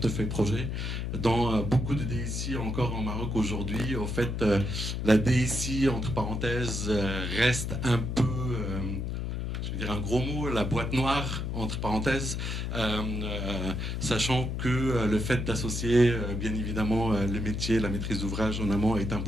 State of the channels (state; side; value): noise; left; hum, 3 dB below the sound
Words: projet. Dans beaucoup de DSI encore en Maroc aujourd'hui, au fait, la DSI, entre parenthèses, reste un peu... je vais dire un gros mot, la boîte noire, entre parenthèses, sachant que le fait d'associer, bien évidemment, le métier, la maîtrise d'ouvrage en amont est un